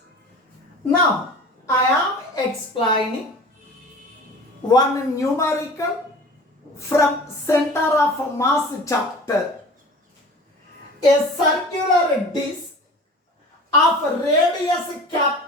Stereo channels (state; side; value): normal; both; correlation 0.40